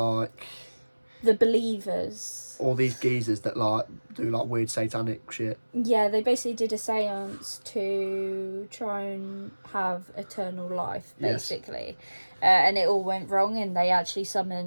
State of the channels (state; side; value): inverted; both; correlation -1.00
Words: the believers. All these geezers that do weird satanic shit. Yeah, they basically did a seance to try and have eternal life, basically. Yes. And it all went wrong, and they actually